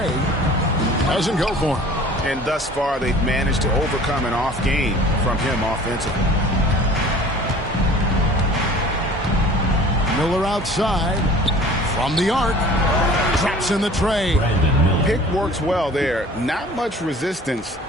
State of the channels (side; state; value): both; normal; correlation 0.46